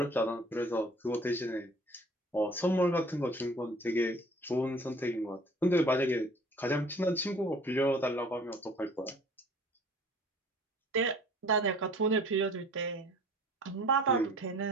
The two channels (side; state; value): both; normal; correlation 0.50